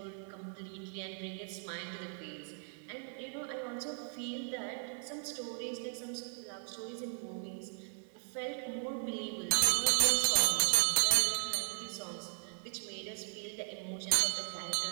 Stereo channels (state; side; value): silent; left; 53 dB below the other